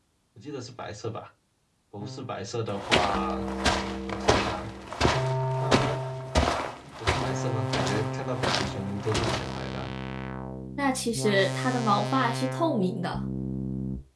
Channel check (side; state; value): both; identical; correlation 1.00